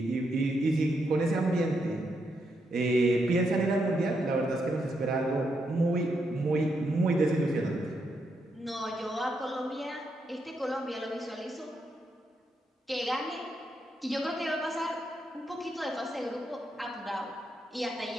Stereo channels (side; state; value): both; normal; correlation 0.80